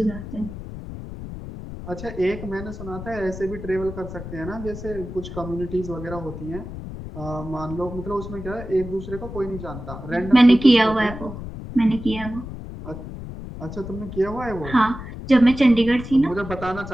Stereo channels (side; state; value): left; noise; rumble, 10 dB below the sound